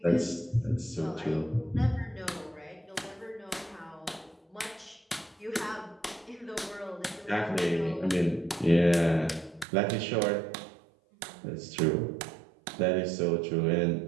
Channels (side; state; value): left; drops out; at 9.7 s